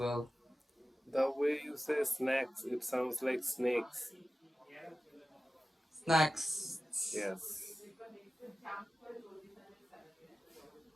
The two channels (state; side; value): normal; both; correlation 0.94